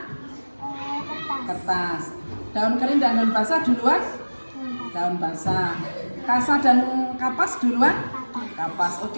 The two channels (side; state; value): both; inverted; correlation -1.00